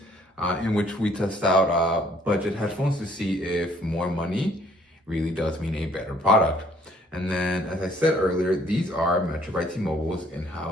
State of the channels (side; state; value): both; normal; correlation 0.62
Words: in which we test out budget headphones to see if more money really does mean a better product. And then, as I said earlier, these are Metro by T-Mobile's